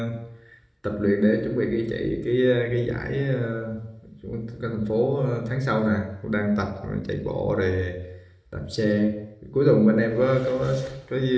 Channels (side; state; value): both; identical; correlation 1.00